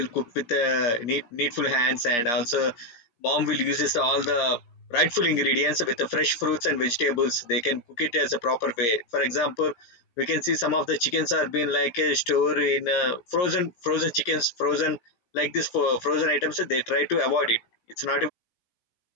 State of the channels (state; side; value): late; right; 17 ms